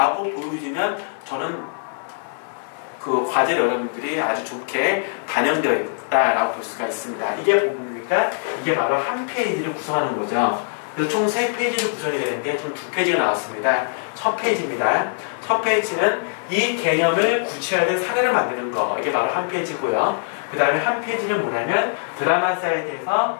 보여주면 저는 그 과제를 여러분들이 아주 좋게 반영되어 있다라고 볼 수가 있습니다. 이게 뭡니까? 이게 바로 한 페이지를 구성하는 거죠. 그래서 총 3페이지를 구성이 되는데 총 2페이지가 나왔습니다. 첫 페이지입니다. 첫 페이지는 이 개념을 구체화된 사례를 만드는 거. 이게 바로 한 페이지고요. 그 다음에 한 페이지는 뭐냐면 드라마 사이트에서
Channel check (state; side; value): silent; right; 56 dB below the other